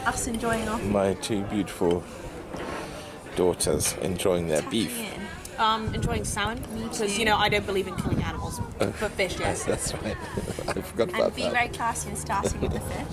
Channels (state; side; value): identical; both; correlation 1.00